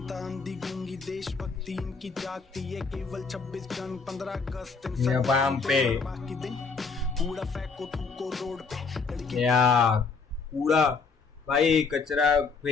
अंधी गूंगी देशभक्ति इनकी जागती है केवल 26 जन 15 अगस्त इंस्टाग्राम पे बाकी दिन कूड़ा फेंको थूको रोड पे लड़की या कूड़ा भाई, कचरा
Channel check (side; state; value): right; quieter; 4.9 dB